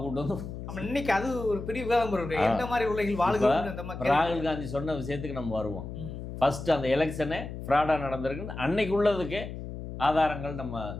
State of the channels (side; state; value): left; noise; hum, 9 dB below the sound